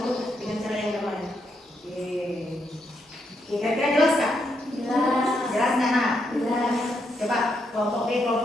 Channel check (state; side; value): normal; both; correlation 0.79